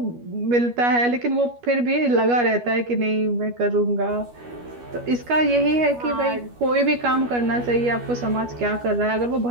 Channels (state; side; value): late; left; 12 ms